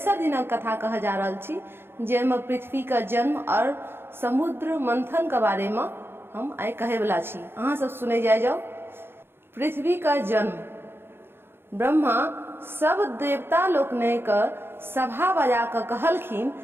दिनक कथा कह जा रहल छी, जेमे पृथ्वी का जन्म और समुद्र मंथन के बारे में हम आइ कहे वाला छी। अहाँ सब सुने जाओ। पृथ्वी का जन्म ब्रह्मा सब देवता लोकने के सभा बजा के कहलखिन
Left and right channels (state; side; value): late; left; 0.11 ms